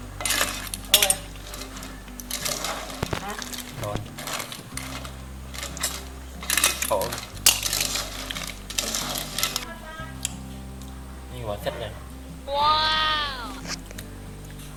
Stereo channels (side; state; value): both; identical; correlation 1.00